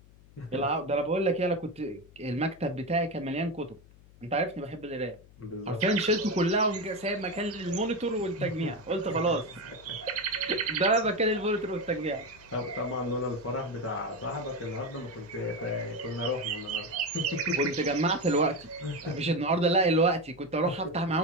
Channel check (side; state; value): left; noise; hum, 24 dB below the sound